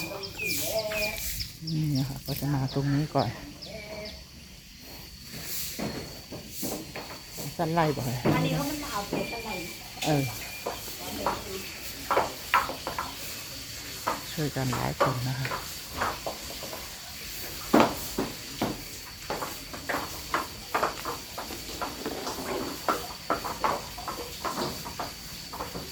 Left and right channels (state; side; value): identical; both; correlation 1.00